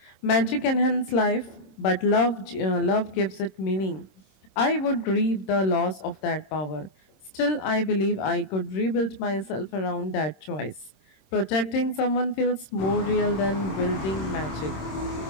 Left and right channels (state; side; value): late; right; 26 ms